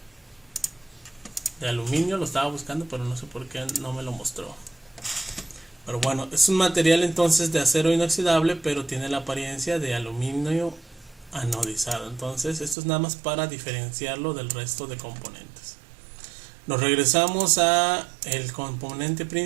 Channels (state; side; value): drops out; left; at 12.8 s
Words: de aluminio. Lo estaba buscando, pero no sé por qué no me lo mostró. Pero bueno, es un material entonces de acero inoxidable, pero tiene la apariencia de aluminio anodizado. Entonces esto es nada más para diferenciarlo del resto de componentes. Nos regresamos a el componente